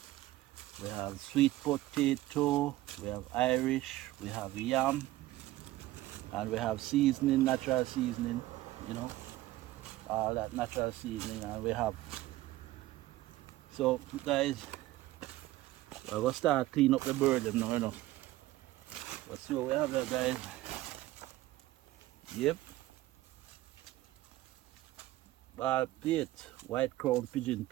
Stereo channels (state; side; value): quieter; left; 16.5 dB